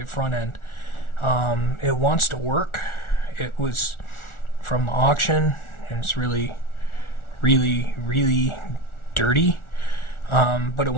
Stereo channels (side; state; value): right; late; 1.4 ms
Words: front end. It wants to work. It was from the auction, and it's really dirty. But it